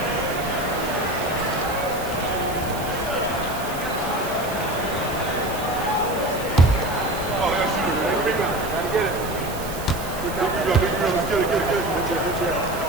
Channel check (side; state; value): right; noise; hiss, 13 dB below the sound